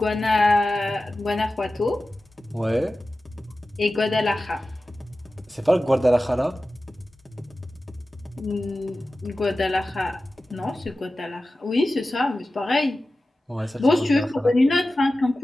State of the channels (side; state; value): both; normal; correlation 0.95